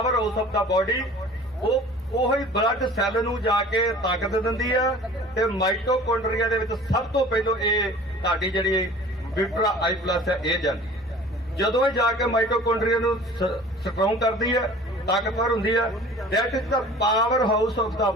house of the body. ਉਹੀ ਬਲੱਡ ਸੈੱਲ ਨੂੰ ਜਾ ਕੇ ਤਾਕਤ ਦਿੰਦੀ ਆ ਤੇ ਮਾਈਟੋਕੌਂਡਰੀਆ ਦੇ ਵਿੱਚ ਸਭ ਤੋਂ ਪਹਿਲਾਂ ਇਹ ਤੁਹਾਡੀ ਜਿਹੜੀ ਵਿਟਰਾ ਆਈ ਪਲਸ ਹੈ ਇਹ ਜਾਂਦੀ ਹੈ। ਜਦੋਂ ਇਹ ਜਾ ਕੇ ਮਾਈਟੋਕੌਂਡਰੀਆ ਨੂੰ ਸਟਰੋਂਗ ਕਰਦੀ ਹੈ, ਤਾਕਤਵਰ ਹੁੰਦੀ ਹੈ, that is the power house of the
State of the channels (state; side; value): normal; both; correlation 0.44